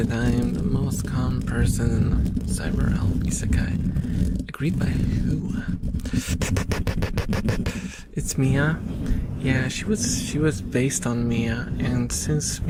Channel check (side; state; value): both; identical; correlation 1.00